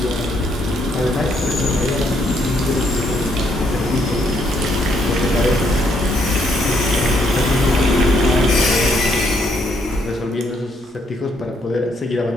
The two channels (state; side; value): normal; both; correlation 0.72